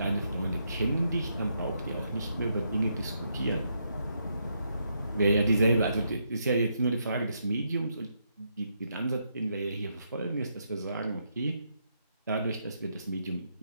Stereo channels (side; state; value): both; inverted; correlation -0.78